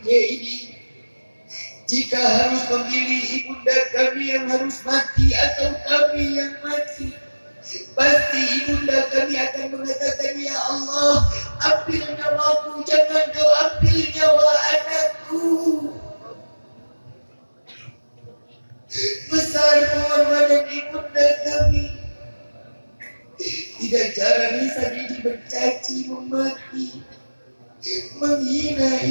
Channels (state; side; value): inverted; both; correlation -1.00